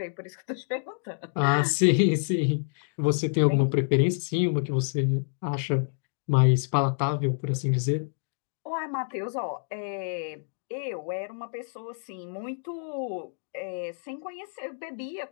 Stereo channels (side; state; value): right; silent; digital silence